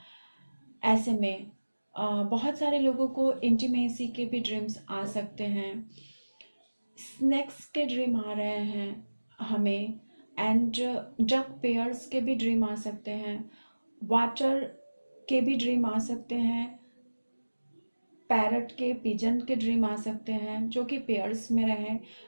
ऐसे में बहुत सारे लोगों को इंटीमेसी के भी ड्रीम्स आ सकते हैं, स्नैक्स के ड्रीम आ रहे हैं हमें, एंड डक पेयर्स के भी ड्रीम आ सकते हैं, वाटर के भी ड्रीम आ सकते हैं, पैरट के, पिजन के ड्रीम आ सकते हैं जो कि पेयर्स में रहे,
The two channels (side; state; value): both; inverted; correlation -1.00